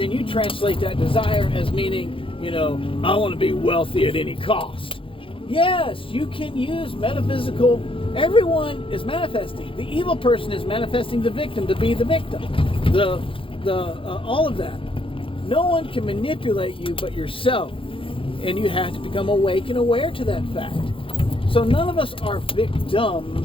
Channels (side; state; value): right; late; 0.26 ms